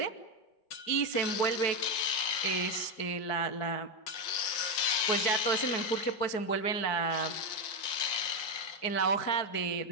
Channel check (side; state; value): right; late; 4.6 ms